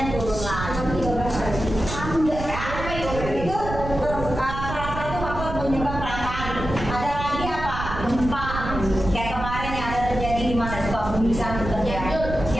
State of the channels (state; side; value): noise; right; rumble, 7 dB below the sound